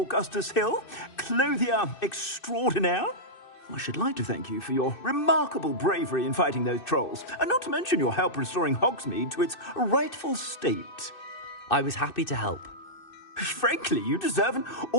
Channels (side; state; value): right; late; 2.6 ms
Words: Hill, clothier extraordinaire. I should like to thank you for your remarkable bravery in fighting those trolls, and not to mention your help restoring Hogsmeade to its rightful state. I was happy to help. Frankly, you deserve an